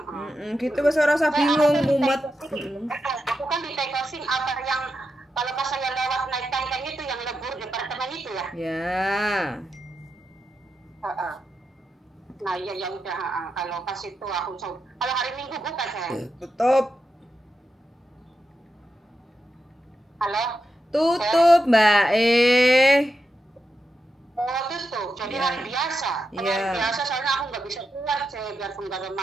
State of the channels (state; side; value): normal; both; correlation 0.87